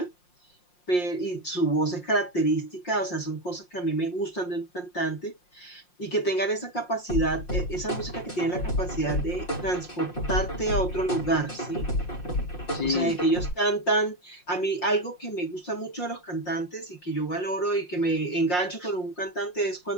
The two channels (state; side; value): late; right; 5.6 ms